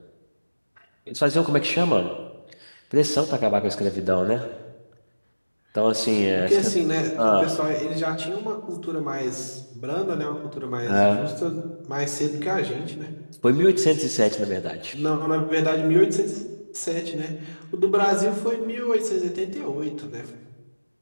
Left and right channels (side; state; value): both; inverted; correlation -1.00